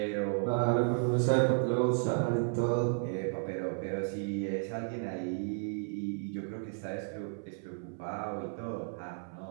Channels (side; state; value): left; silent; 56 dB below the other